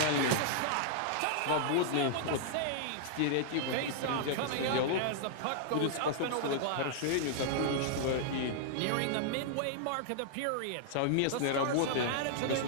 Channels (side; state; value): both; different; correlation -0.01